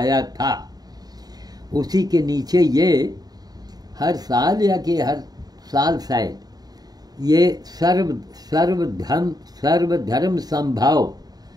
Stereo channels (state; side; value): late; left; 0.19 ms